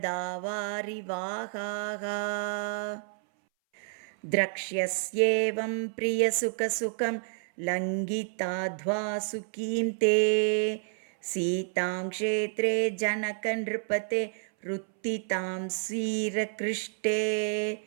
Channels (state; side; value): silent; left; 58 dB below the other